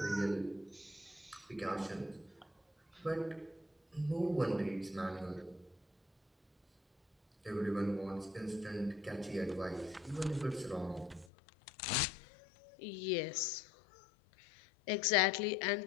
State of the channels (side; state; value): right; drops out; at 11.2 s